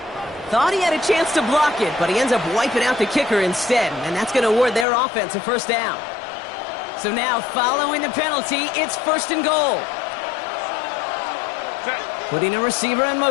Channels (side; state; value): right; drops out; at 4.9 s